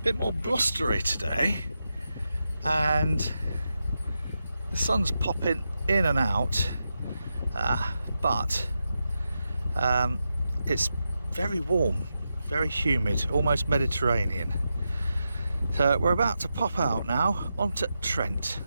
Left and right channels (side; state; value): both; inverted; correlation -0.88